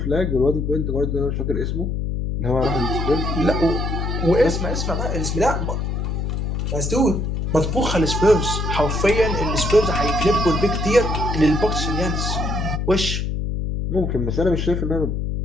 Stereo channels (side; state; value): left; noise; hum, 1 dB below the sound